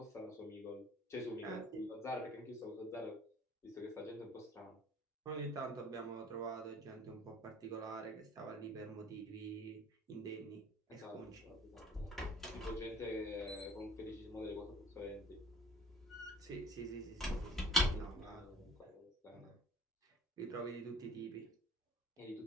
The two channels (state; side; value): normal; both; correlation 0.49